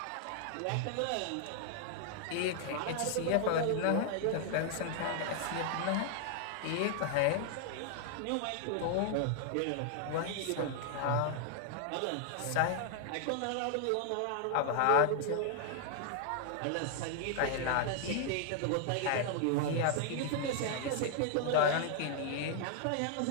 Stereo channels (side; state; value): both; different; correlation 0.00